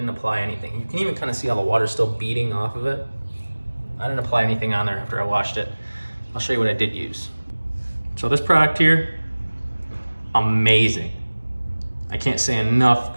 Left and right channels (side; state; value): both; inverted; correlation -1.00